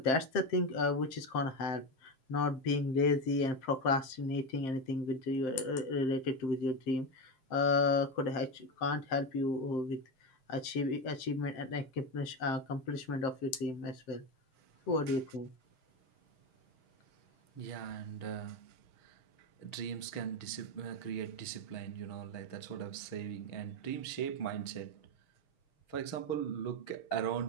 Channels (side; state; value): right; late; 7.6 ms